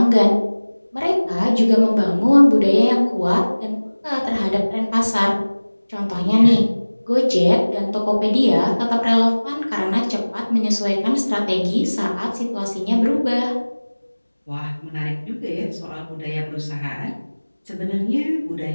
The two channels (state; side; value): inverted; both; correlation -1.00